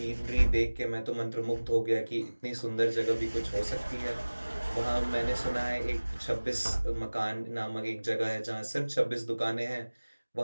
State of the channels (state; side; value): inverted; both; correlation -1.00